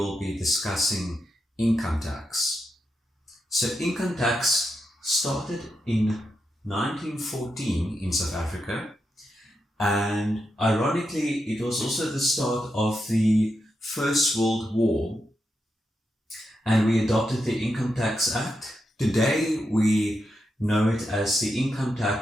be discussing income tax. So income tax started in 1914 in South Africa, and ironically it was also the start of the First World War, and we adopted the Income Tax Act. Today we know it as the Income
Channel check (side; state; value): both; normal; correlation 0.85